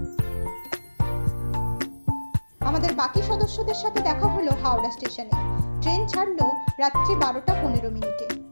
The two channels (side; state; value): both; inverted; correlation -1.00